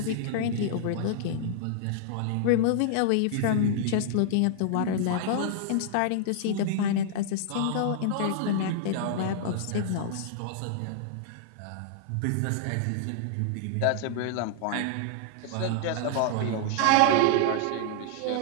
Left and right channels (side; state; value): both; different; correlation -0.01